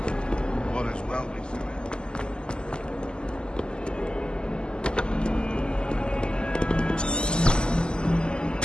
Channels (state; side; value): late; right; 0.048 ms